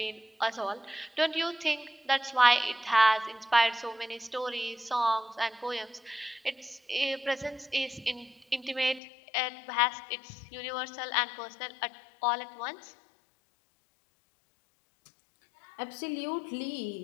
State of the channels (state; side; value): drops out; right; at 9.0 s